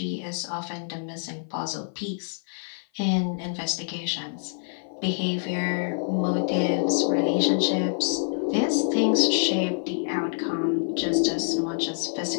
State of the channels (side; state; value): right; silent; 56 dB below the other